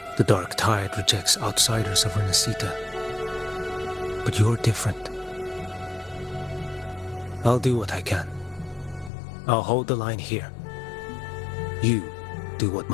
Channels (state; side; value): drops out; right; at 9.1 s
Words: The dark tide rejects outsiders of Renacita. But you're different. I'll do what I can. I'll hold the line here. You do what